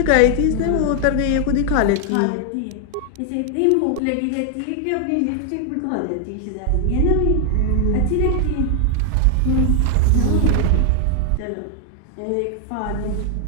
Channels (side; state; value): both; different; correlation 0.00